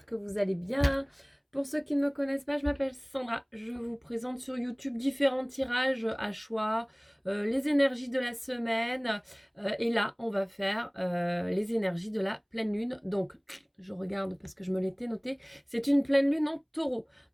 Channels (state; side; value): identical; both; correlation 1.00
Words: que vous allez bien. Pour ceux qui ne me connaissent pas, je m'appelle Sandra, je vous présente sur YouTube différents tirages à choix, les énergies de la semaine, et là on va faire les énergies de la pleine lune. Donc je regarde parce que je me l'étais noté, c'est une pleine lune en taureau,